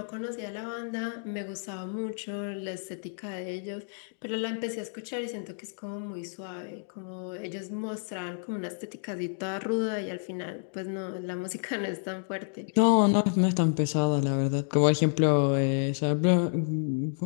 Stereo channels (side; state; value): right; silent; digital silence